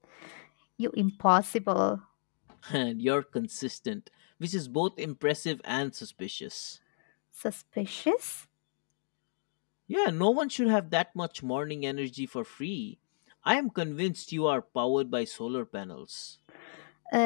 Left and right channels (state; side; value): silent; right; digital silence